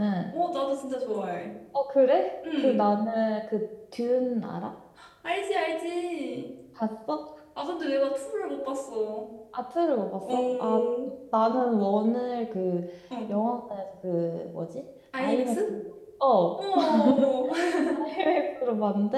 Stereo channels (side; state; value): both; identical; correlation 1.00